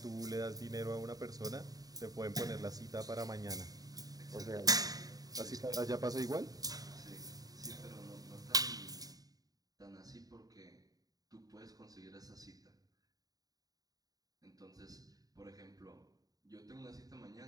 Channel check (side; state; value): left; late; 0.18 ms